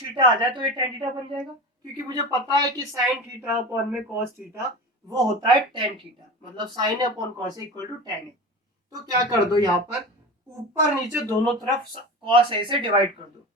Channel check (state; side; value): normal; both; correlation 0.30